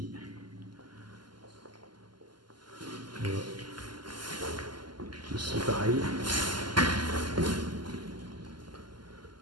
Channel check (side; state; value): left; late; 0.71 ms